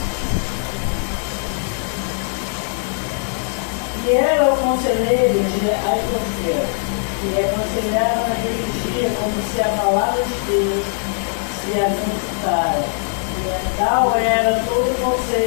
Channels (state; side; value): silent; right; digital silence